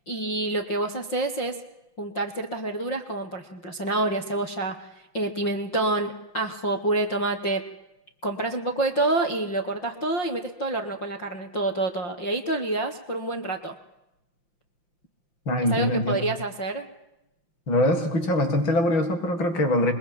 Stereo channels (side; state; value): right; late; 5.8 ms